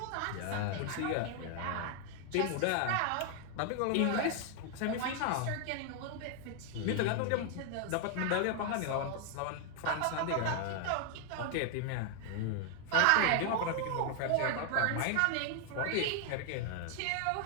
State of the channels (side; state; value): both; different; correlation 0.00